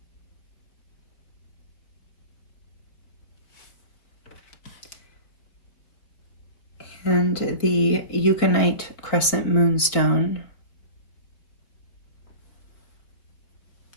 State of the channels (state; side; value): late; right; 4.6 ms